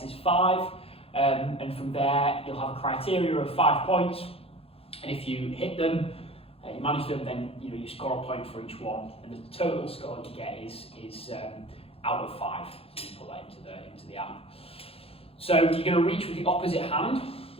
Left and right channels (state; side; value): late; right; 0.28 ms